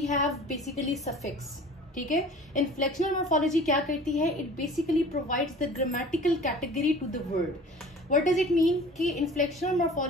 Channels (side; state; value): both; normal; correlation 0.44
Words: हैव बेसिकली सफिक्स, ठीक है। इन्फ्लेक्शनल मॉर्फोलॉजी क्या करती है? It basically provides the grammatical category to the word. What does it mean कि इन्फ्लेक्शनल